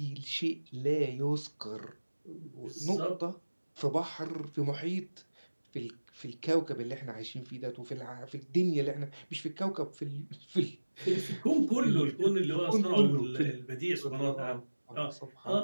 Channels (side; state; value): both; inverted; correlation -1.00